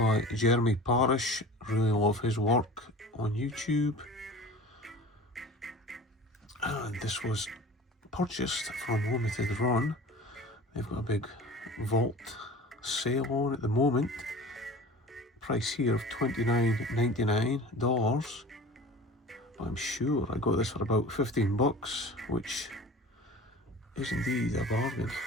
Jeremy Parish. Really love his work on YouTube. And this was purchased from limited run. They've got a big vault sale on at the moment. Price here of $29.99. But I'm sure I got this for about 15 bucks, which is indeed a bargain.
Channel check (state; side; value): normal; both; correlation 0.40